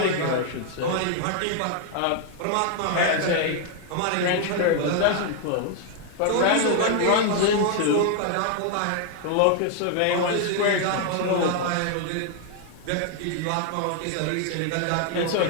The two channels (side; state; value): both; different; correlation 0.00